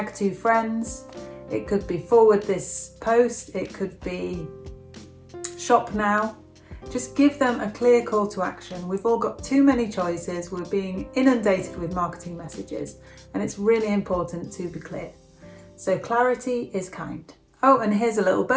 2 friends. It could be forward this post. It could be shop now. Just give them a clear call to action. We've all got too many choices. We're being inundated with marketing messages, and it's really important to be clear. So clarity is kind. Oh, and here's a little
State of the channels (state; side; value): identical; both; correlation 1.00